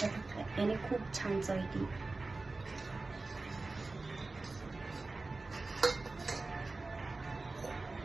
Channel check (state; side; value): quieter; left; 3.4 dB